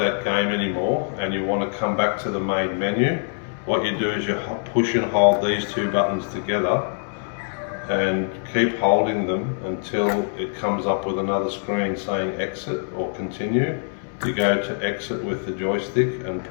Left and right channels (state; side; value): silent; right; 62 dB below the other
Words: game anymore and you want to come back to the main menu, what you do is you push and hold these two buttons together and keep holding them until it comes up with another screen saying exit or continue. You go to exit with the joystick and